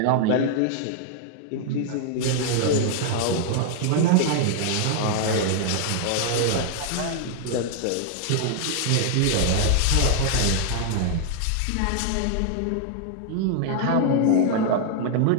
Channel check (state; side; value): different; both; correlation 0.00